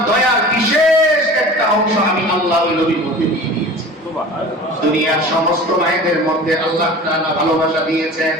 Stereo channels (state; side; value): normal; both; correlation 0.39